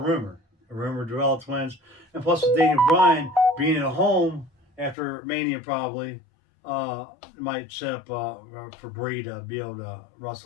A rumor to Bella Twins, and plus with Daniel Bryan being at home after Mania probably might set up for Brie to be able to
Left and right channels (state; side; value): drops out; right; at 5.0 s